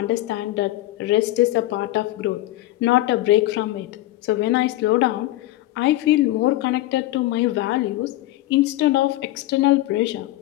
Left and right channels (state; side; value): quieter; right; 16.2 dB